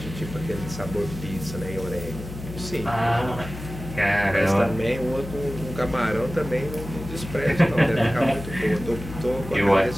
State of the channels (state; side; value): noise; left; hum, 11 dB below the sound